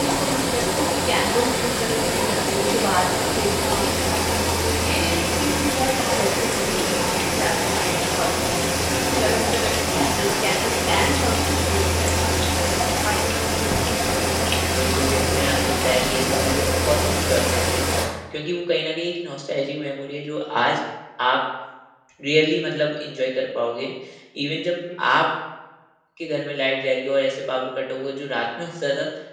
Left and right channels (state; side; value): identical; both; correlation 1.00